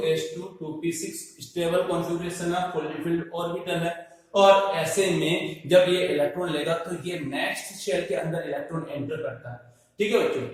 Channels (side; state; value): both; identical; correlation 1.00